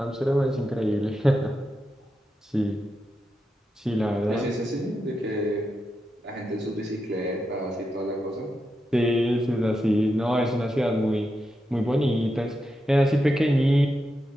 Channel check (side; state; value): both; normal; correlation 0.87